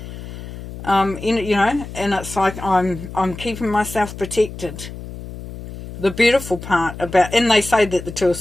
And it's like I'm keeping myself protected. The beautiful part about, and they say that the Two of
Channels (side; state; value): left; noise; hum, 12 dB below the sound